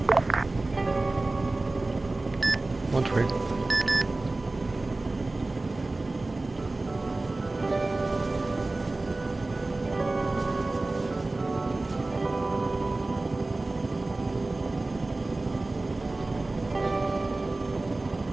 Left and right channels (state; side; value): quieter; left; 3.1 dB